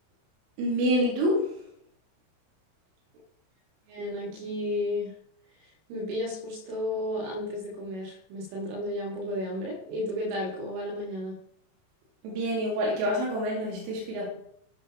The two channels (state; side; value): late; left; 32 ms